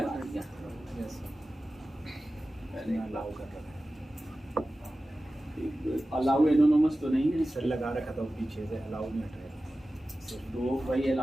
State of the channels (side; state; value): both; normal; correlation 0.95